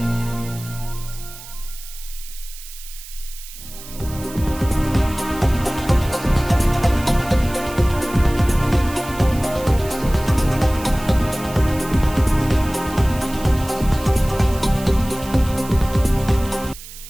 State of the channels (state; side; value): noise; right; hiss, 15 dB below the sound